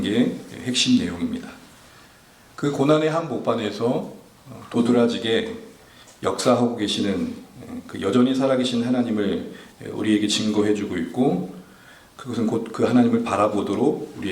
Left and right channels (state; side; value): identical; both; correlation 1.00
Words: 핵심 내용입니다. 그 고난의 한복판에서 도드라지게 역사하고 계시는 그 여전히 살아계신 하나님을 우리에게 증거해주고 있고, 그것은 곧 그 하나님을 바라보도록